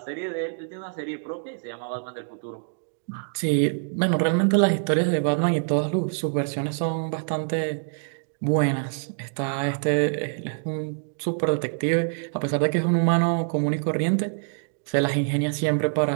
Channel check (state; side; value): silent; left; digital silence